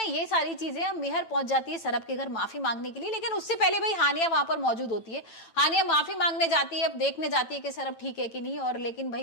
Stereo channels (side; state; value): right; late; 9.0 ms